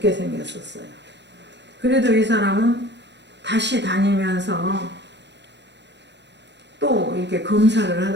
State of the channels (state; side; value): late; left; 0.51 ms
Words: 생겼었어요. 그래도 이 사람은 다시 다니면서 또 이렇게 검사를